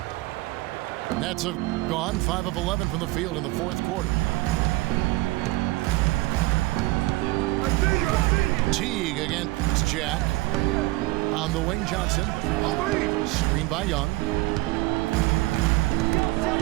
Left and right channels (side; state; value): left; quieter; 20.9 dB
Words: Nets have gone 5 of 11 from the field in the fourth quarter. Teague against Jack. On the wing, Johnson. Screen by Young.